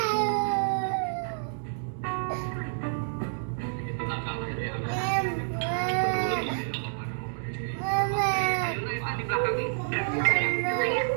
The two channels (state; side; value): silent; left; digital silence